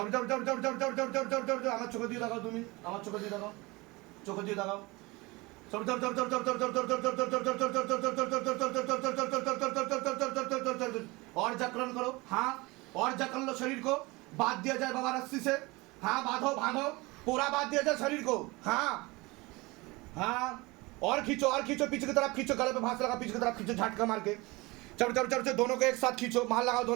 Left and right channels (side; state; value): left; quieter; 23.5 dB